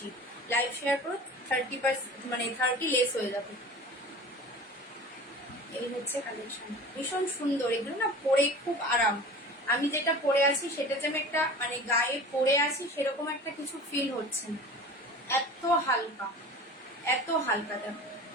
লাইভ শেয়ার করো, 30% মানে 30 লেস হয়ে যাবে। এই হচ্ছে কালেকশন, ভীষণ সুন্দর। এগুলো না পরে খুব আরাম, আমি যেটা পরে আছি সেটা যে আমি একটা মানে গায়ে পরে আছি সেরকম একটা কিছু ফিল হচ্ছে না, এত হালকা, এত হালকা। দেখো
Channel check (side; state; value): both; normal; correlation 0.38